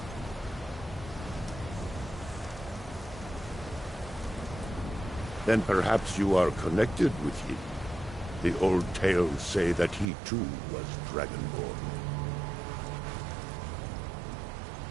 Then perhaps you are connected with him. The old tales say that he too was dragonborn.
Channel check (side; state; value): left; drops out; at 10.1 s